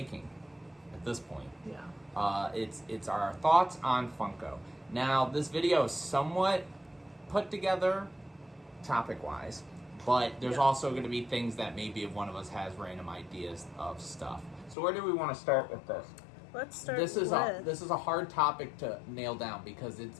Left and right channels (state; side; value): drops out; right; at 14.8 s